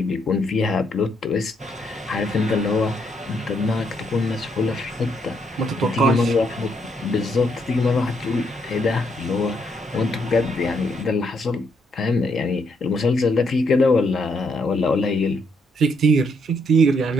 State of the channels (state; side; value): normal; both; correlation 0.74